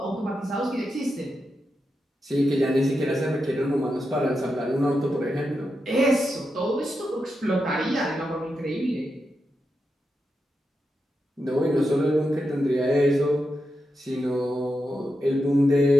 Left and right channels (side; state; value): both; normal; correlation 0.87